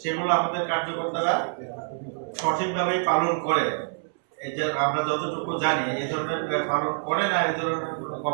সেগুলো আমাদের কার্যকর্তারা সঠিকভাবেই পালন করে। এই যে আমরা যতটুকু জানি এই ধরনের পালন করে না, এই ধরনের কোনো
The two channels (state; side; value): silent; left; 61 dB below the other